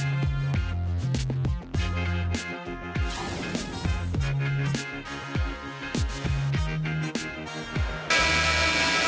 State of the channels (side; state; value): both; identical; correlation 1.00